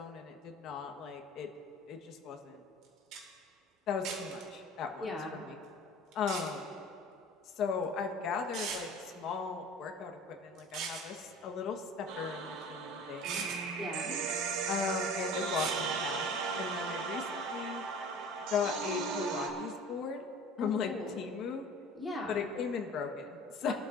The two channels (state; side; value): normal; both; correlation 0.42